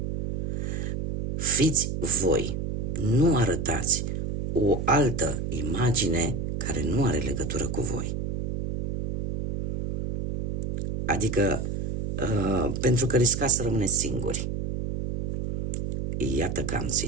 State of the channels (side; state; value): right; noise; hum, 1 dB below the sound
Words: Fiți voi, nu arătați o altă imagine care nu are legătură cu voi. Adică, pentru că riscați să rămâneți singuri. Iată că am